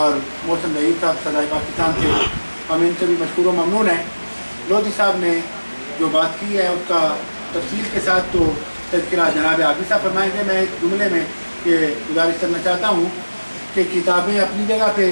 محسن ظہیر صاحب صدائے پاکستان سے، ہم ان سے بھی مشکور و ممنون ہیں۔ لودھی صاحب نے جو بات کی ہے اس کا تفصیل کے ساتھ تو تذکرہ جناب عابد صاحب فرمائیں گے۔ میں ایک جملے میں یہ گزارش کرنا چاہتا ہوں کہ کتابیں اپنی جگہ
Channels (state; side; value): inverted; both; correlation -1.00